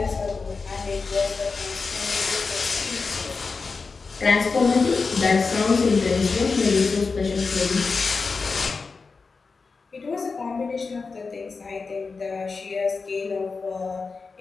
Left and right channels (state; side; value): quieter; right; 4.5 dB